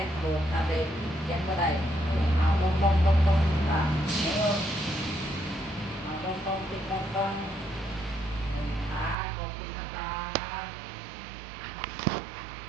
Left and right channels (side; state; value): left; drops out; at 9.2 s